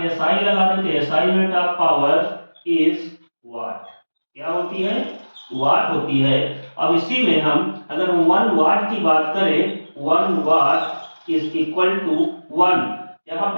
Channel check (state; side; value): inverted; both; correlation -1.00